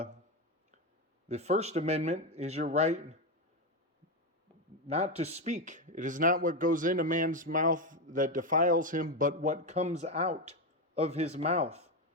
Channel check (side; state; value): both; normal; correlation 0.11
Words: First Amendment is your right not to speak. It is not what goes in a man's mouth that defiles him, but what comes out of his mouth